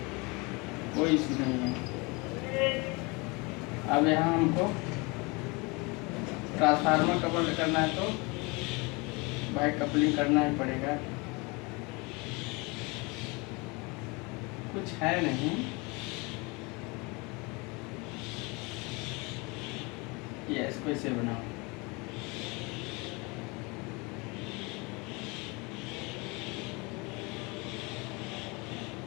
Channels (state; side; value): quieter; right; 27.4 dB